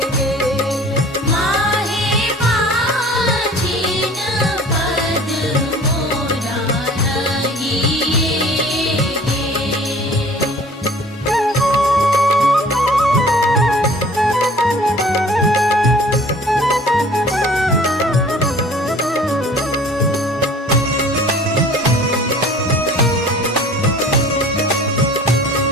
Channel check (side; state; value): both; normal; correlation 0.48